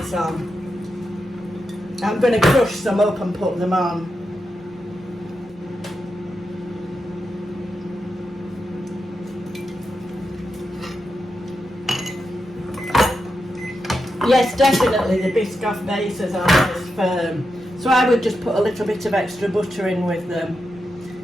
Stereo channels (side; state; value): both; normal; correlation 0.87